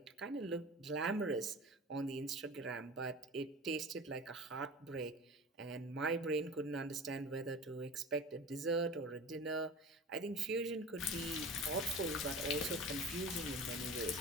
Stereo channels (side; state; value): both; normal; correlation 0.35